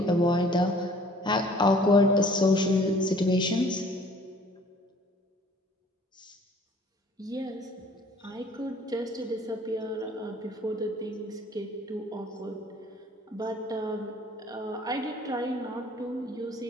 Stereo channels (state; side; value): normal; both; correlation 0.54